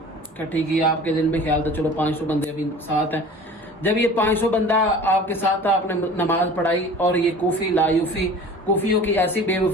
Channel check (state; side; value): normal; both; correlation 0.42